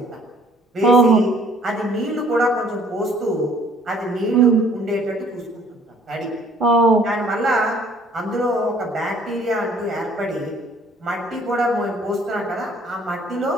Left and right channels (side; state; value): both; normal; correlation 0.58